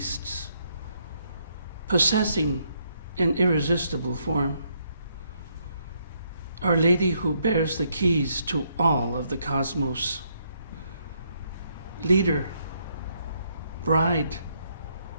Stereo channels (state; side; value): inverted; both; correlation -0.73